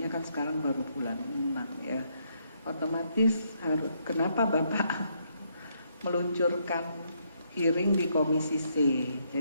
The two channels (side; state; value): both; inverted; correlation -0.74